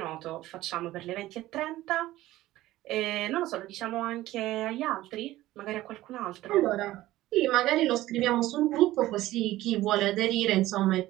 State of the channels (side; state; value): left; quieter; 16.1 dB